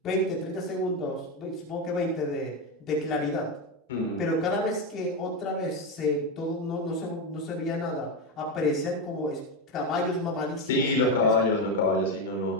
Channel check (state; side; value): normal; both; correlation 0.11